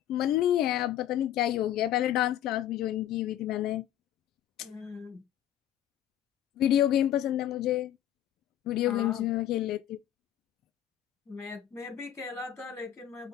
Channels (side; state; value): right; quieter; 11.5 dB